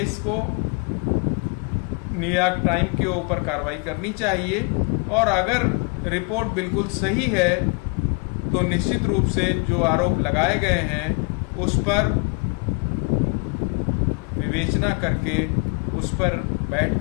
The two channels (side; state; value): right; quieter; 33.1 dB